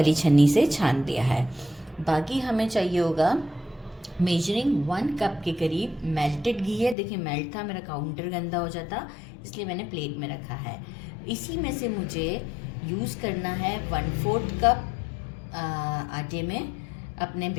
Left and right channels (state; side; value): drops out; right; at 7.0 s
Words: छन्नी से छान लिया है। बाकी हमें चाहिए होगा मेजरिंग 1 कप के करीब मेल्टेड घी है। देखिए मेल्ट था, मेरा काउंटर गंदा हो जाता इसलिए मैंने प्लेट में रखा है। इसी में से मुझे यूज़ करना है 1/4 कप आटे में, अपने